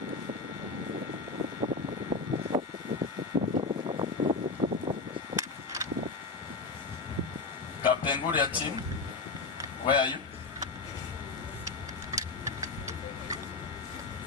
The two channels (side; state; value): right; quieter; 3.9 dB